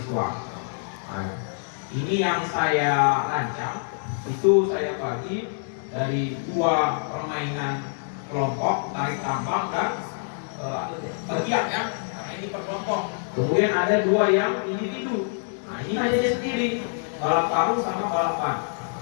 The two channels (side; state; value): right; silent; 61 dB below the other